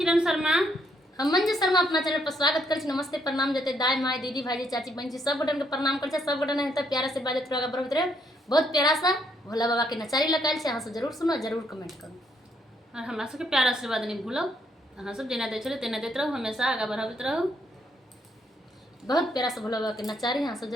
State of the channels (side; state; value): both; normal; correlation 0.72